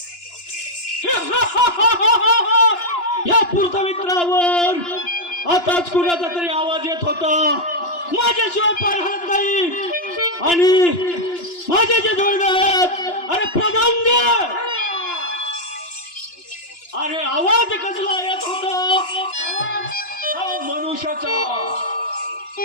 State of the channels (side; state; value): right; late; 2.9 ms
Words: या पृथ्वीतरावर आताच कुणाचा तरी आवाज येत होता. माझ्याशिवाय पार हलत नाही आणि माझ्याच्या डोळ्यात अरे प्रधान अरे आवाज कसला येत होता मनुष्याचा.